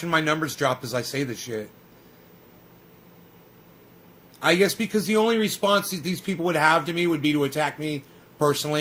my numbers drop as I say this shit. I guess because the only response that these people would have to me would be to attack me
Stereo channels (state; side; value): identical; both; correlation 1.00